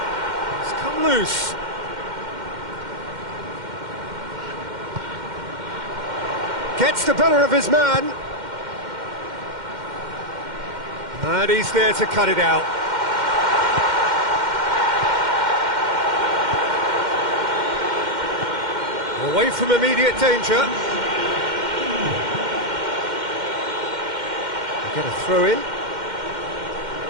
It's come loose. Gets the better of his man. And he's there to cut it out. Away from immediate danger. Get a throw in.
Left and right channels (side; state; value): left; late; 2.1 ms